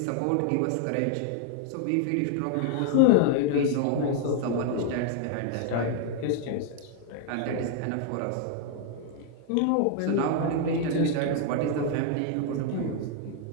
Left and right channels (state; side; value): different; both; correlation 0.00